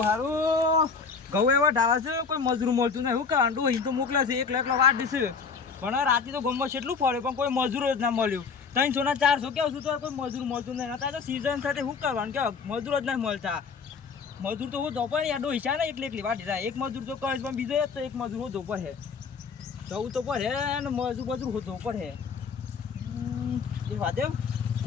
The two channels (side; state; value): right; quieter; 5.4 dB